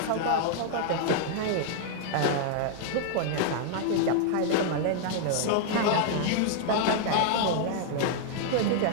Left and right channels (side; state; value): both; different; correlation -0.01